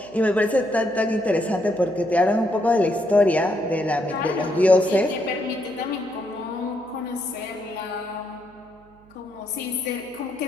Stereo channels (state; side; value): noise; right; hum, 28 dB below the sound